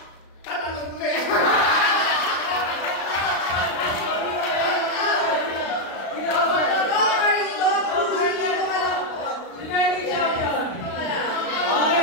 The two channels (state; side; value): late; right; 36 ms